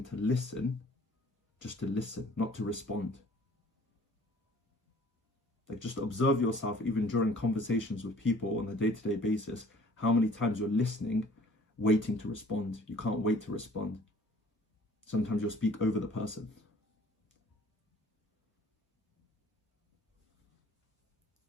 to listen, just to listen, not to respond. Like, just observe yourself, even during conversations with people on a day-to-day basis, how many times you're listening, waiting to respond. You can't wait to respond. Sometimes you'll speak over the person.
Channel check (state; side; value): normal; both; correlation 0.52